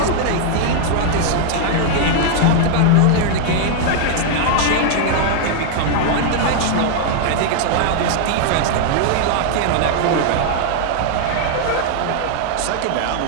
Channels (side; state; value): both; different; correlation 0.00